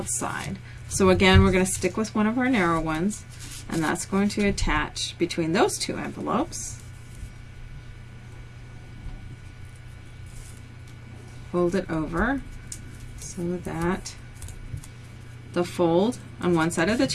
So again, we're going to stick with one of our narrow ones, and that's going to attach between those 2 envelopes. Fold it over so that the fold on one side of the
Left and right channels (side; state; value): both; identical; correlation 1.00